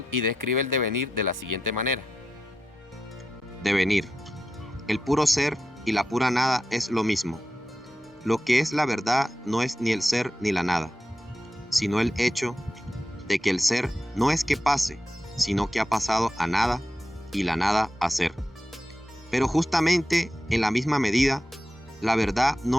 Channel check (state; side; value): normal; both; correlation 0.89